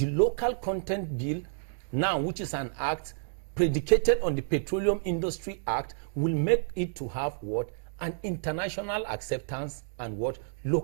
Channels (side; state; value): left; silent; digital silence